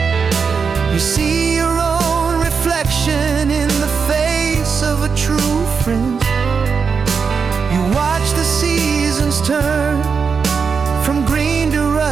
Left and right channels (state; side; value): quieter; left; 5.7 dB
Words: You see your own reflection in the face of a true friend. You watch the seasons turn from green to